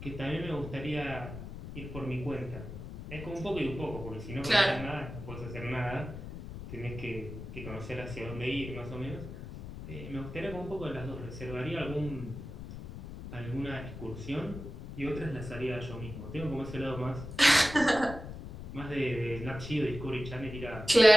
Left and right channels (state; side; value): noise; left; rumble, 10 dB below the sound